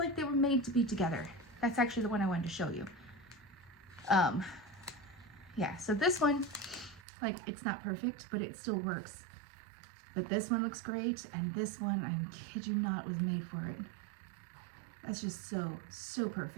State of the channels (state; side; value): drops out; left; at 7.0 s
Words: they were made to be together. That's actually the one I wanted to show you. Yeah, so this one, like, it's not perfect, but it still works. But this one looks great, and this one, I kid you not, was made for it. That's just so